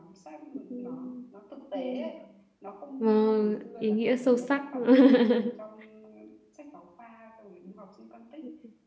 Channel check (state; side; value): identical; both; correlation 1.00